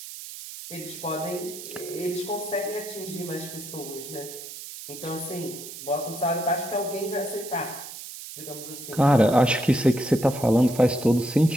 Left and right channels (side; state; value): right; noise; hiss, 12 dB below the sound